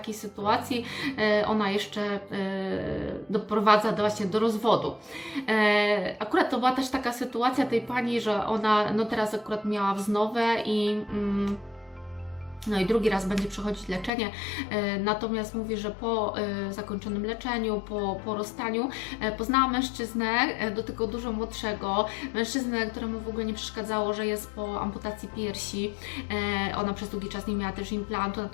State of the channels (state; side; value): drops out; right; at 14.1 s